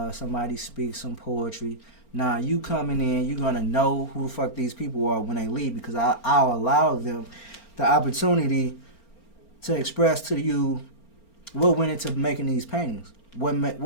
somebody speak some poetry. Nah, you coming in, you're going to know who the fuck these people are when they leave, because I'll allow them the opportunity to express to you what went into making these paintings, what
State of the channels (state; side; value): late; right; 4.4 ms